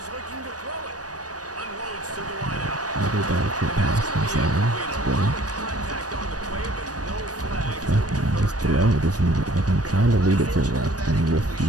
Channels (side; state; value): left; late; 0.68 ms